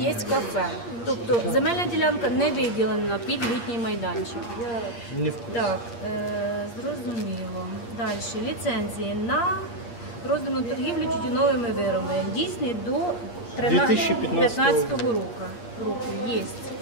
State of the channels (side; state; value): right; late; 8.5 ms